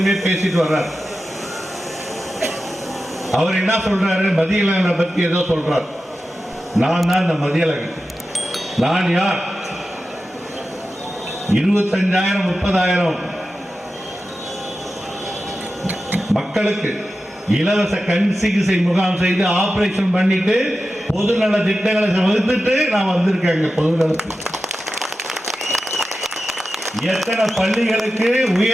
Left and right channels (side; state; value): both; normal; correlation 0.92